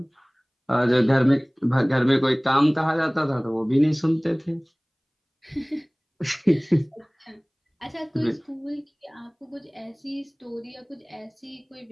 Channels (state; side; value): identical; both; correlation 1.00